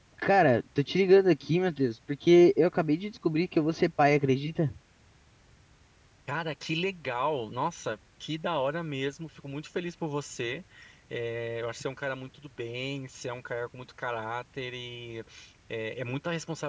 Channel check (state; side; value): identical; both; correlation 1.00